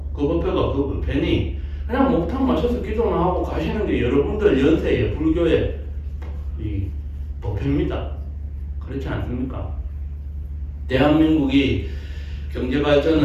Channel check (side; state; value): both; identical; correlation 1.00